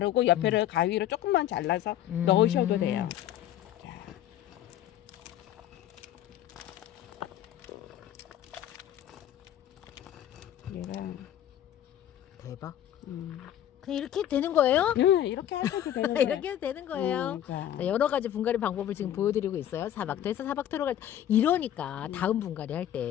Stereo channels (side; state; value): right; quieter; 11.5 dB